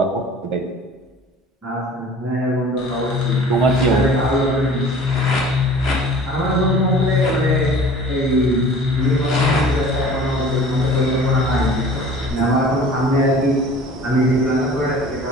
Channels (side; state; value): both; normal; correlation 0.45